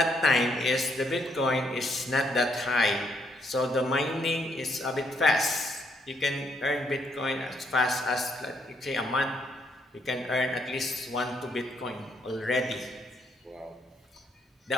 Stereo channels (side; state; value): both; normal; correlation 0.72